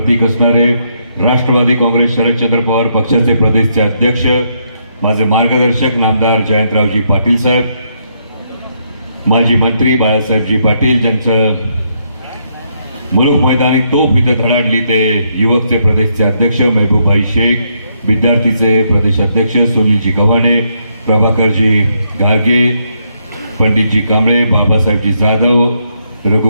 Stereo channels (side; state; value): both; inverted; correlation -0.76